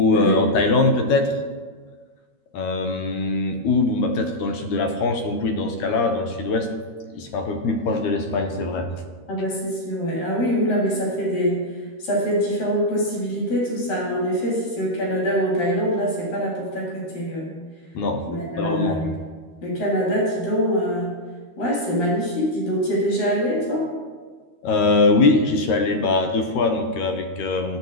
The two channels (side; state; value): right; late; 13 ms